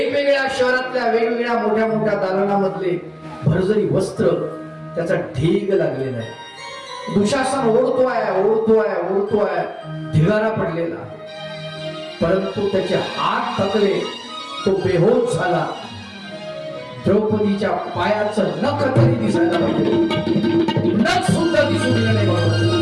शहरातल्या वेगवेगळ्या मोठ्या मोठ्या दालनामधले भरजरी वस्त्र, त्याचा ढीग लागलेला आहे. दुशासन ओढतोय, ढिगारा पडलेला, परंतु त्याचे हात थकले, तो बेहोश झाला. द्रौपदीच्या पायाचं नख तरी दिसायला पाहिजे, नख सुद्धा दिसून गेलं नाही.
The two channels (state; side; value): identical; both; correlation 1.00